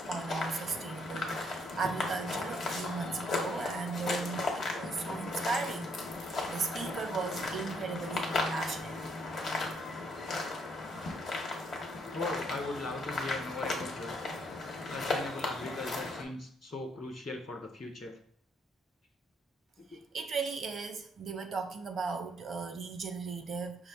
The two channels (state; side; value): normal; both; correlation 0.70